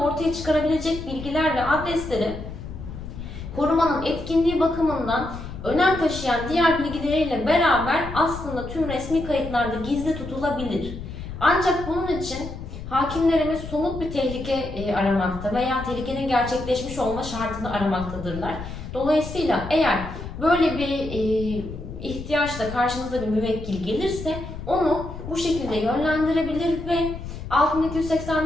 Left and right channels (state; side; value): noise; left; rumble, 10 dB below the sound